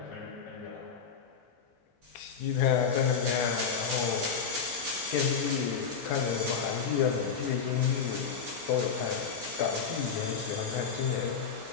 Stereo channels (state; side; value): quieter; right; 6.3 dB